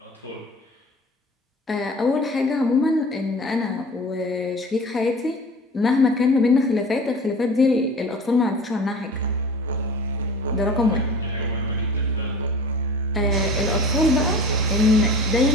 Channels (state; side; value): normal; both; correlation 0.40